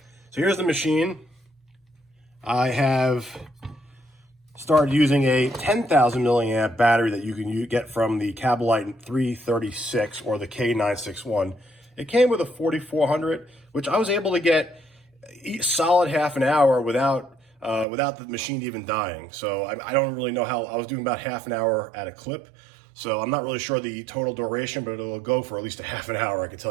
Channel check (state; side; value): drops out; left; at 17.9 s